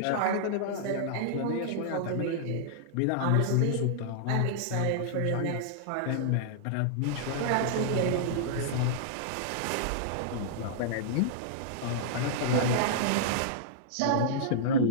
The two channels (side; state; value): both; different; correlation -0.02